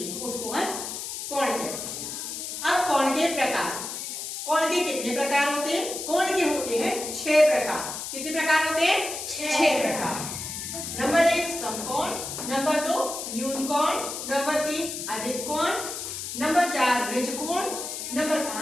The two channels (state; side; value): noise; left; hiss, 6 dB below the sound